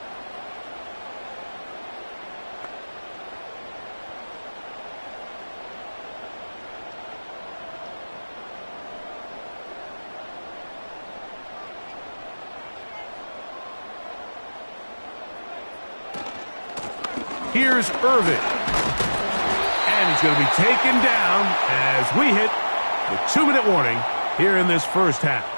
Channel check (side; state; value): both; inverted; correlation -1.00